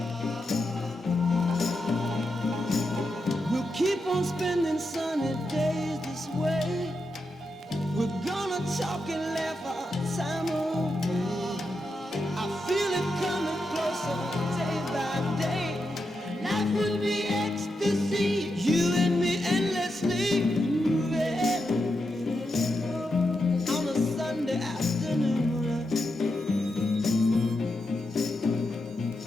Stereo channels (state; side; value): normal; both; correlation 0.86